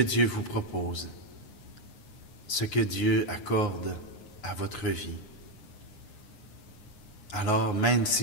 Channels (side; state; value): right; late; 9.6 ms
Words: vous propose, ce que Dieu accorde à votre vie. Alors, même